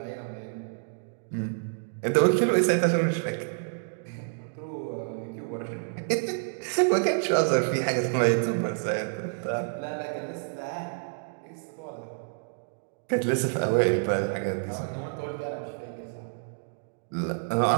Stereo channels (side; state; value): left; silent; digital silence